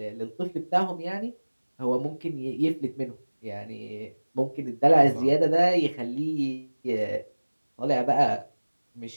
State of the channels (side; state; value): both; inverted; correlation -1.00